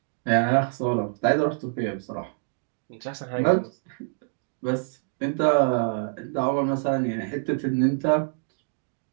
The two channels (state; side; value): silent; left; digital silence